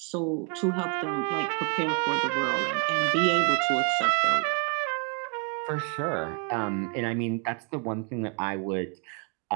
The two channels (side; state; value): left; quieter; 37.8 dB